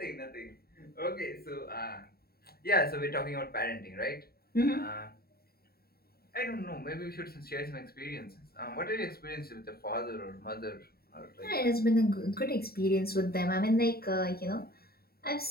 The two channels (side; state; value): right; late; 0.45 ms